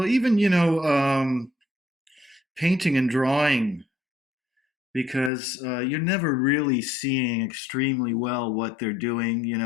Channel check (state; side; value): drops out; right; at 5.3 s